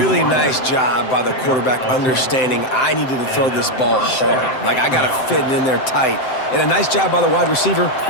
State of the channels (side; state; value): right; late; 7.7 ms